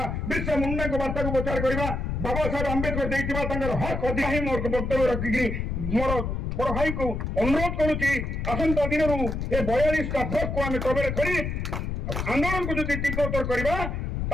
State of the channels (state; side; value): noise; left; rumble, 3 dB below the sound